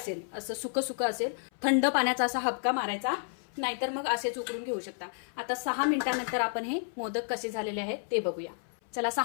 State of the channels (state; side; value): silent; right; 57 dB below the other